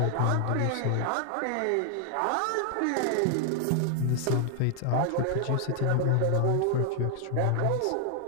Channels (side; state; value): both; different; correlation 0.00